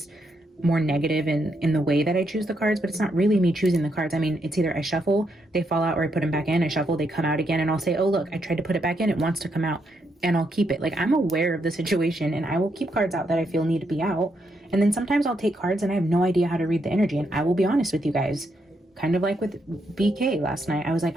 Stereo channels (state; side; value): normal; both; correlation 0.78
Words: more negative in the way that I choose the cards, but it's not really me choosing the cards. I mean, it's either I shuffle, they fall out, or I put them back in. I shuffle, they come out again, and I'll say, oh, look, I tried to put it back in, it wants to come out, and I'll keep it. Like, I'm aware of the situation, and I will keep cards out that I feel need to be out. And then sometimes I'll take cards and I have no idea how to read the energy, and I will be honest with you guys. Kind of like with BK last night. I was like,